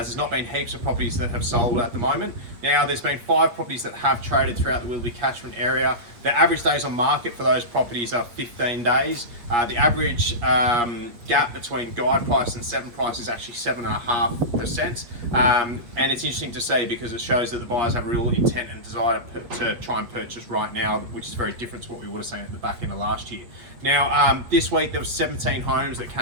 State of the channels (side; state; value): left; late; 8.4 ms